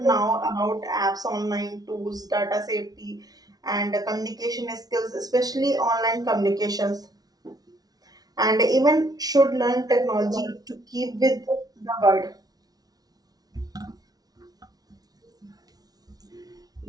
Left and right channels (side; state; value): left; late; 0.19 ms